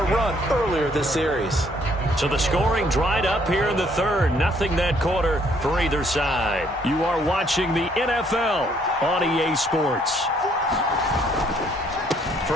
run earlier this series. So the scoring dried up here in the third. Nothing that quarter for either side. You are watching the NFL on EA Sports.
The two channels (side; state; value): both; normal; correlation 0.66